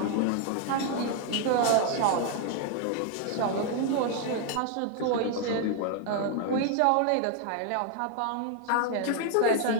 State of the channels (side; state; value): both; different; correlation 0.00